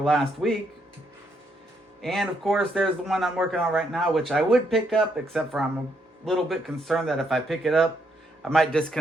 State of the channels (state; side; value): normal; both; correlation 0.75